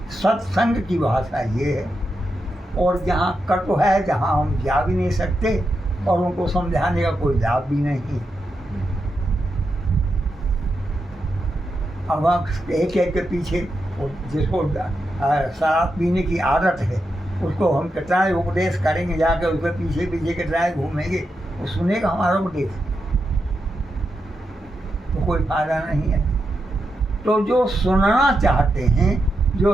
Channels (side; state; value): both; normal; correlation 0.86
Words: सत्संग की भाषा ये है। और जहाँ कटु है, जहाँ हम जा भी नहीं सकते और उनको समझाने का कोई लाभ भी नहीं। अब हम एक के पीछे, जिसको शराब पीने की आदत है उसको हम कितना उपदेश करेंगे, जाकर उसके पीछे पीछे कितना घूमेंगे, वो सुनेगा हमारा उपदेश? तो कोई फायदा नहीं है। तो जो सुनना चाहते हैं,